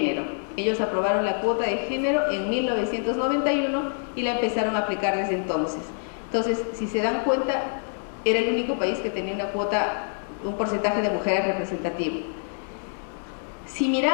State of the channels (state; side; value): silent; right; digital silence